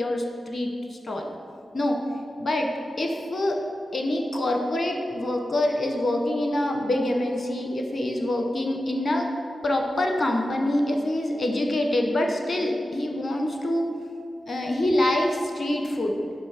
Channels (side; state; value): both; normal; correlation 0.92